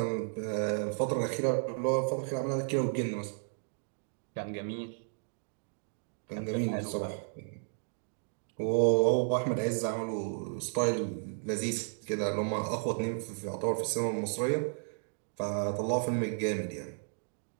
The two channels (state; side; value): silent; left; digital silence